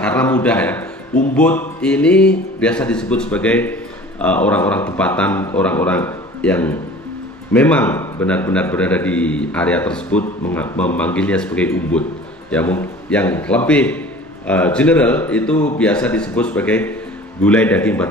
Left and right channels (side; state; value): both; normal; correlation 0.44